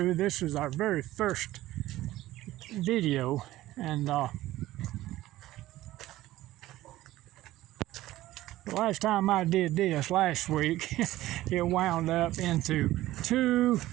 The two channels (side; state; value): left; quieter; 15.8 dB